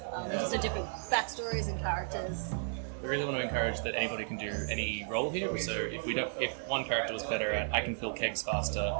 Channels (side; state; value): left; silent; 55 dB below the other